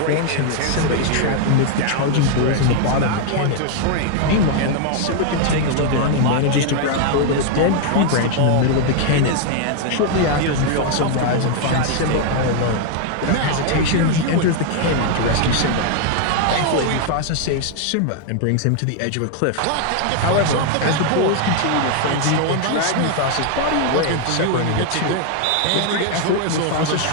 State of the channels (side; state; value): both; different; correlation 0.00